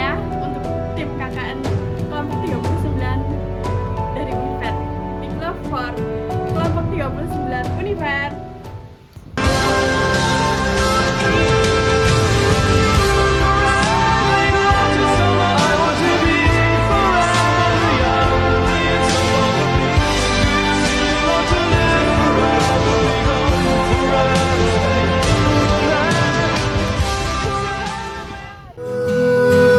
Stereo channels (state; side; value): identical; both; correlation 1.00